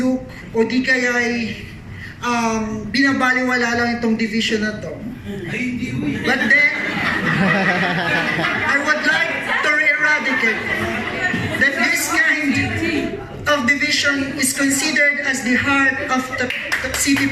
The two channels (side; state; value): both; identical; correlation 1.00